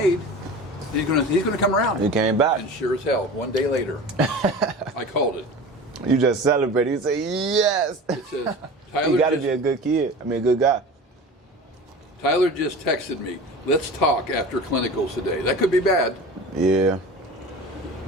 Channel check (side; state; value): both; normal; correlation 0.36